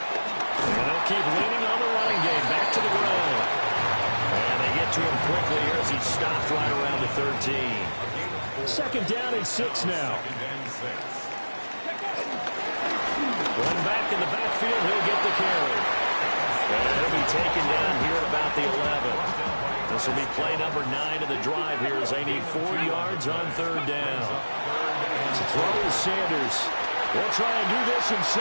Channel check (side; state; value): both; inverted; correlation -1.00